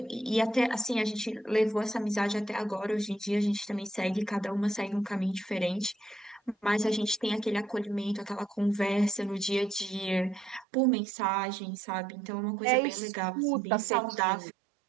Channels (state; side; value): drops out; left; at 10.7 s